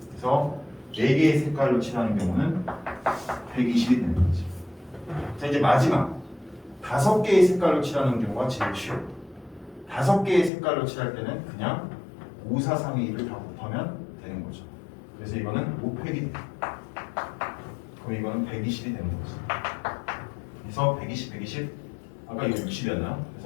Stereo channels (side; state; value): right; drops out; at 10.5 s